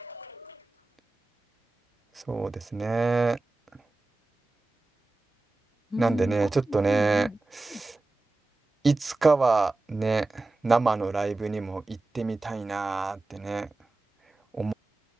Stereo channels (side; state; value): left; quieter; 3.2 dB